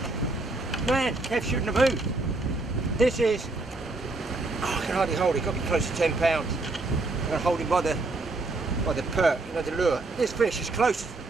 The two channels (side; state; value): left; quieter; 3.2 dB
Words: Man, Kev shouldn't have moved. This is, oh, I can hardly hold it. Got to be close to 10 pounds. I'm going to hold him by the perk, you know, the lure. This fish is close.